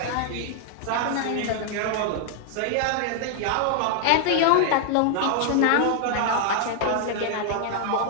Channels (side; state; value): both; different; correlation 0.00